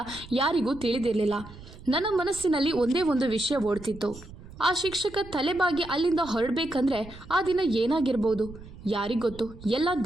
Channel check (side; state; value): right; noise; rumble, 17 dB below the sound